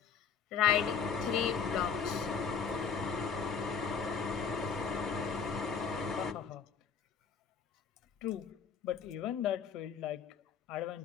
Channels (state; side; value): quieter; right; 6.4 dB